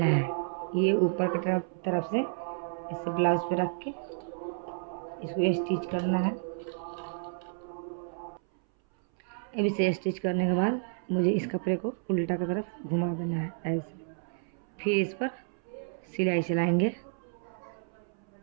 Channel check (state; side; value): silent; left; 57 dB below the other